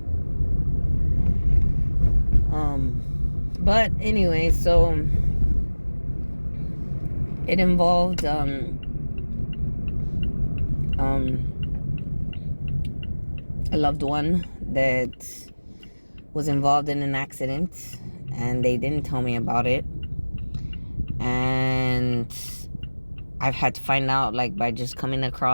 But anyway, so it involved a loved one that was involved in an accident, and they didn't tell me about it. And I've had to find out, like, by just coming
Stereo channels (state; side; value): inverted; both; correlation -1.00